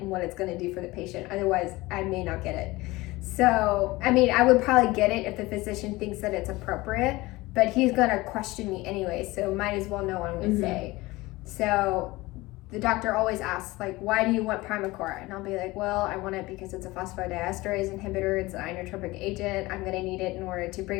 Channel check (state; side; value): quieter; right; 20.6 dB